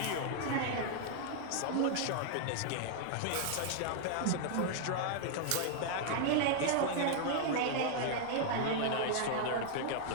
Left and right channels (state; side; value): different; both; correlation -0.01